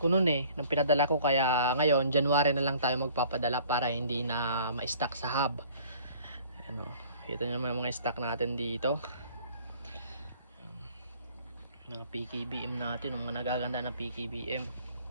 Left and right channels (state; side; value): inverted; both; correlation -0.52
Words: nun eh nang pinadala ko. Kaya ngayon January na lang tayo magpapadala para hindi na ma-stock sa hub. Ano, ito naman mga stock natin dito, mga PKBM natin, mga nagaganda ng PKBM.